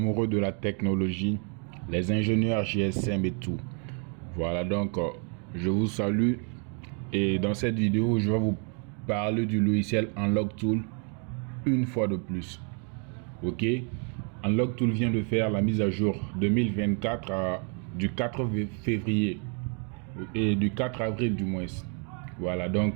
de la technologie, les ingénieurs GSM et tout. Voilà donc je vous salue et dans cette vidéo je vais vous parler du logiciel Unlock Tool une fois de plus. Ok, Unlock Tool vient de faire la mise à jour 2024 du 4 février et du 4 avril du moins. Voilà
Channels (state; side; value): quieter; left; 39.0 dB